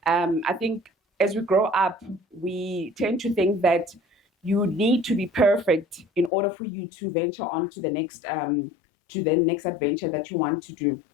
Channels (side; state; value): right; drops out; at 6.3 s